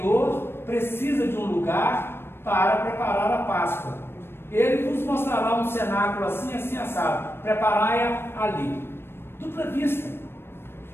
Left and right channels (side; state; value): right; late; 0.11 ms